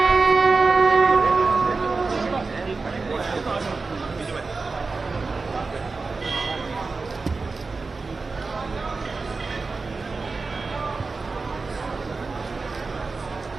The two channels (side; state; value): left; quieter; 4.1 dB